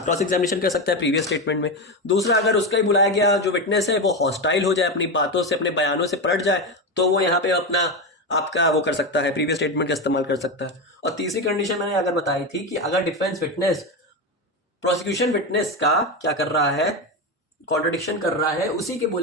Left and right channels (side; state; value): both; normal; correlation 0.15